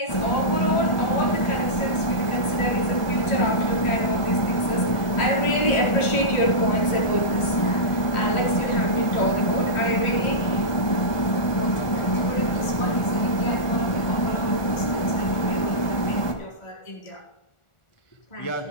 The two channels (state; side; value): late; right; 1.4 ms